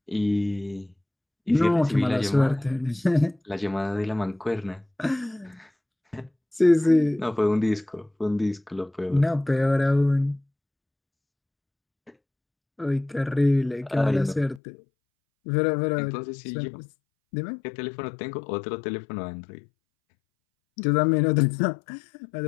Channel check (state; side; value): drops out; right; at 14.6 s